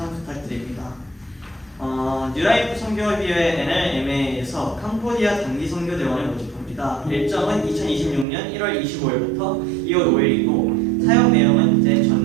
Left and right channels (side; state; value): left; drops out; at 8.2 s